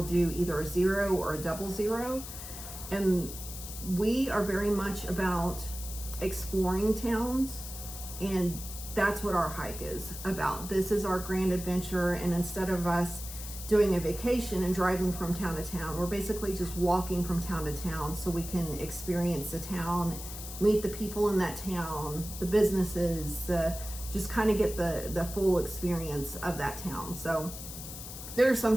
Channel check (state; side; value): noise; left; hiss, 10 dB below the sound